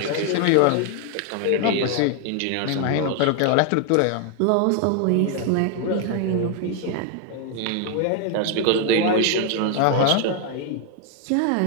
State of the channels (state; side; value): different; both; correlation 0.00